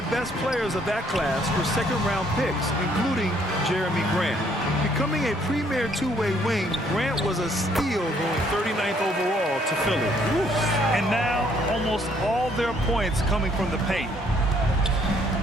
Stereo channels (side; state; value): both; normal; correlation 0.66